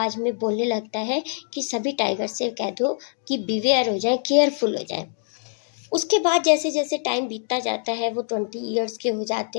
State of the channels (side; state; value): right; silent; 58 dB below the other